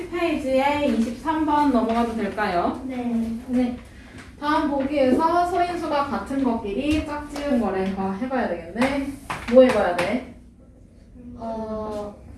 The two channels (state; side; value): identical; both; correlation 1.00